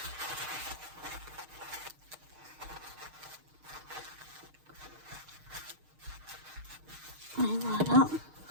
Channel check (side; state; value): left; late; 6.5 ms